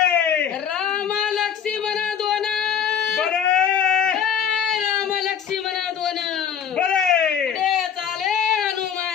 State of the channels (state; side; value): quieter; right; 8.2 dB